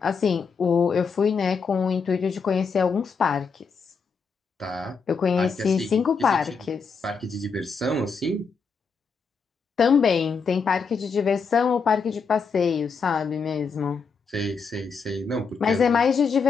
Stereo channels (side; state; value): right; quieter; 5.3 dB